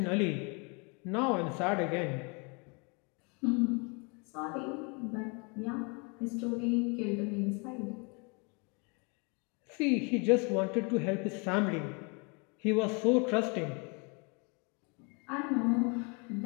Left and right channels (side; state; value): right; quieter; 32.7 dB